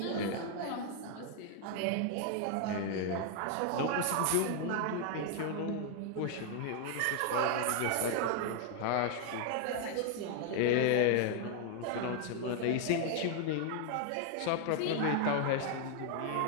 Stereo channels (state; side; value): different; both; correlation 0.00